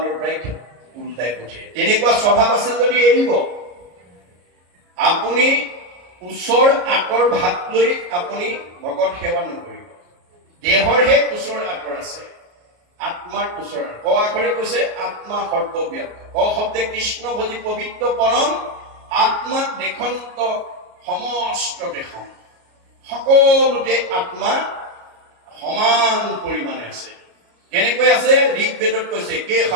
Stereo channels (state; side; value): late; left; 33 ms